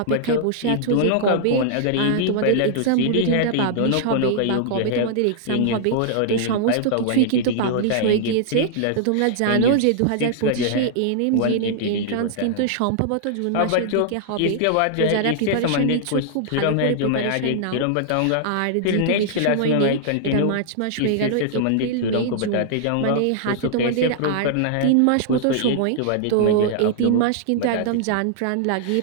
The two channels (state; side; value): different; both; correlation -0.01